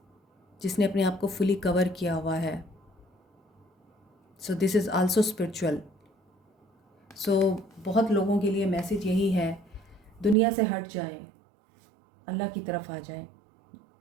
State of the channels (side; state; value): left; drops out; at 10.4 s